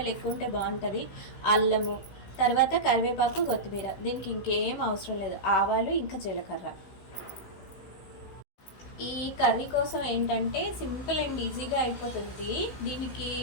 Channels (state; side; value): late; right; 16 ms